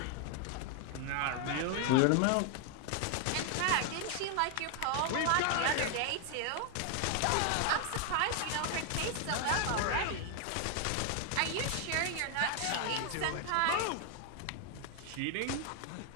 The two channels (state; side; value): different; both; correlation 0.00